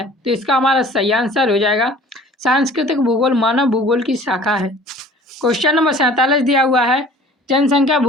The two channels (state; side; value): normal; both; correlation 0.48